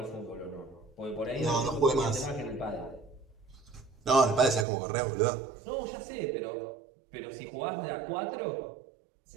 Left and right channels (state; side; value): drops out; left; at 4.7 s